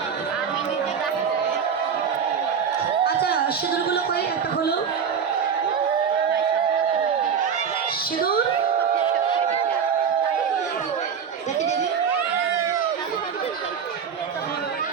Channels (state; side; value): quieter; left; 7.0 dB